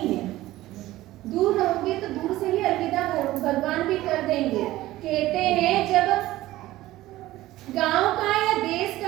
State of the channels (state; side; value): quieter; left; 16.3 dB